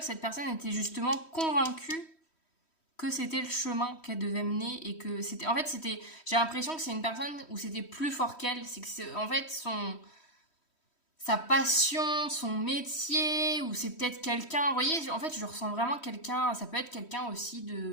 cette personne était justement convaincue que c'était le chemin qu'elle devait mener et que c'était... En fait, j'ai l'impression que c'est une personne où c'était plus fort qu'elle. C'est que en fait, sa passion, son métier, ou c'est peut-être quelqu'un... Vous voyez, en fait, je ressens vraiment quelqu'un... Ça peut être quelqu'un aussi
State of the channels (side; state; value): right; late; 3.1 ms